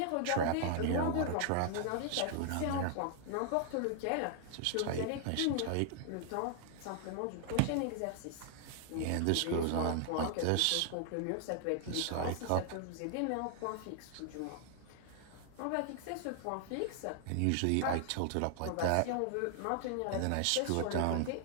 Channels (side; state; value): both; different; correlation 0.00